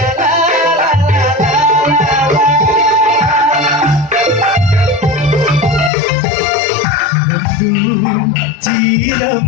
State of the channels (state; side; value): drops out; right; at 5.9 s